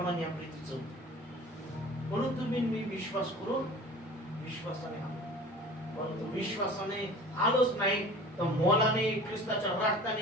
या प्रीतीचं होतं. म्हणून तुम्ही मी विश्वास करून विश्वासाने आलो. परंतु विश्वासाने आलोच नाही तर मोलाने ख्रिस्ताच्या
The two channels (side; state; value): both; normal; correlation 0.41